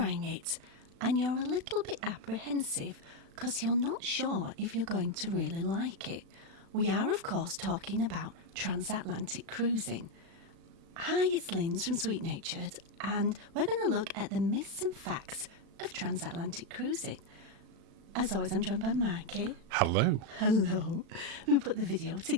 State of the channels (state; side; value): late; left; 36 ms